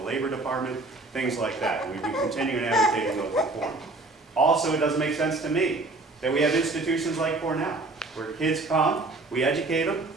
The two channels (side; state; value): left; quieter; 3.1 dB